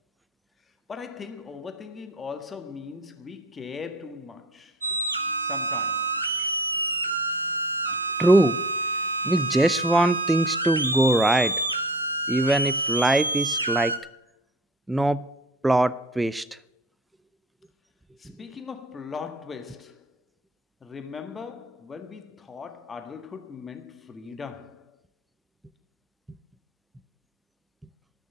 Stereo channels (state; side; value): normal; both; correlation 0.42